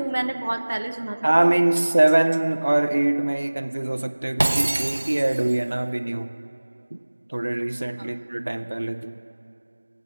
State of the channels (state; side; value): inverted; both; correlation -1.00